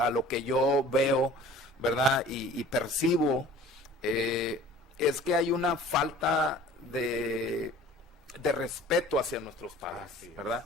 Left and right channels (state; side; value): normal; both; correlation 0.46